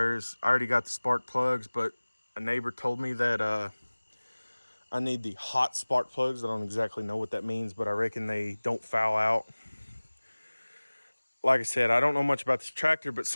I already got the spark plugs, but a neighbor told me that I need the hot spark plugs. I don't exactly know what that means, but I reckon they don't foul out. Like I said, I don't know much about this tractor, but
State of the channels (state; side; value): inverted; both; correlation -1.00